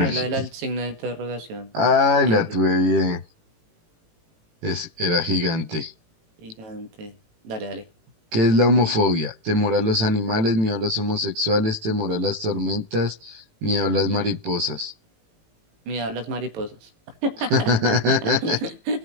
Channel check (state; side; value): late; left; 18 ms